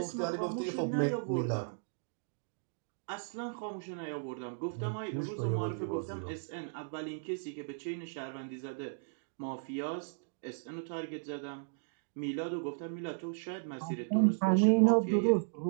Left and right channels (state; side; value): silent; left; digital silence